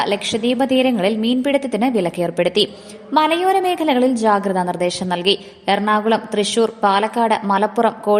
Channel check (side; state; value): both; identical; correlation 1.00